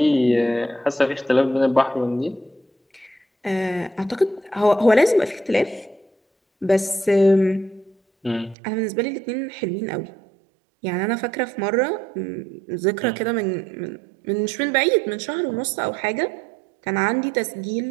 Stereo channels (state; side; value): drops out; left; at 8.6 s